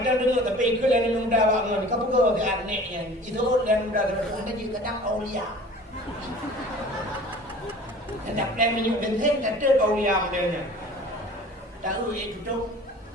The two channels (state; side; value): normal; both; correlation 0.44